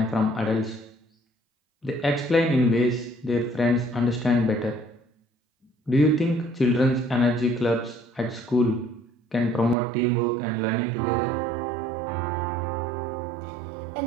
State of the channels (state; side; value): drops out; left; at 9.8 s